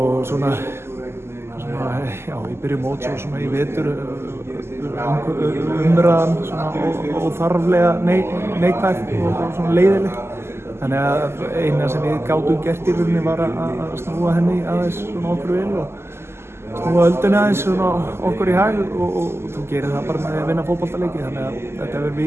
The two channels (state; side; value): late; left; 0.12 ms